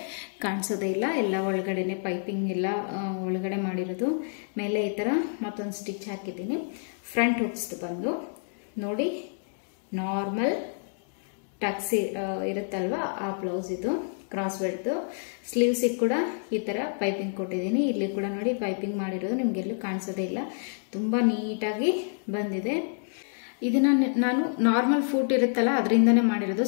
ಕಾಣಿಸೋದೇ ಇಲ್ಲ. ಎಲ್ಲ ಒಳಗಡೆನೆ ಪೈಪಿಂಗ್ ಎಲ್ಲ ಒಳಗಡೆ ಮಾಡಿರೋದು. ಮೇಲೆ ಈ ಥರ ಮತ್ತೊಂದು ಸ್ಟಿಚ್ ಹಾಕಿದ್ದೀನಿ. ಫ್ರಂಟ್ ಹುಕ್ಸ್ ಬಂದು ನೋಡಿ, ನಾರ್ಮಲ್ ಟಕ್ಸ್ ಇರುತ್ತಲ್ವ ಆ ಬ್ಲೌಸ್ ಇದು. ಕ್ರಾಸ್ ಬೆಲ್ಟ್ದು. ಸ್ಲೀವ್ಸಿಗೆ ಕೂಡ ಈ ಥರ ಪೈಪಿಂಗ್ ಕೊಟ್ಟಿದ್ದೀನಿ. ಇಲ್ಲಿ ಕೂಡ ನೋಡಿ, ಪೈಪಿಂಗ್ ಮಾಡಿರೋದು ನಿಮಗೆಲ್ಲೂ ಕಾಣಿಸೋದೇ ಇಲ್ಲ. ತುಂಬ ನೀಟಾಗಿ ಬಂದಿದೆ. ಇದನ್ನ ನಾನು ನಾರ್ಮಲ್ ಫೂಟ್ ಇರುತ್ತಲ್ಲ ಅದರಿಂದನೇ ಮಾಡಿರೋದು,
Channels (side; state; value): right; silent; 59 dB below the other